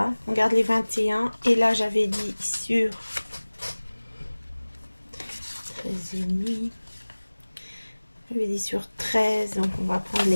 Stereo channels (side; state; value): both; inverted; correlation -1.00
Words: On garde les 21. Et là, j'avais dit sur 13,5. J'avais dit sur 13. Donc, on va prendre